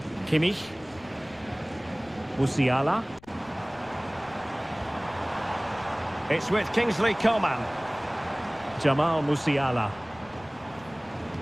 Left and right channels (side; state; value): left; noise; rumble, 24 dB below the sound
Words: Kimmich. Musiala. It's with Kingsley Coman. Jamal Musiala.